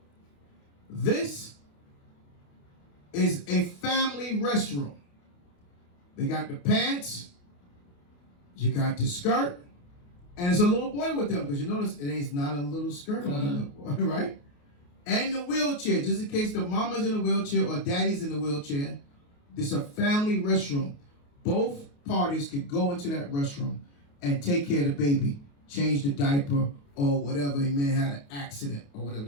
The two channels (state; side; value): late; right; 28 ms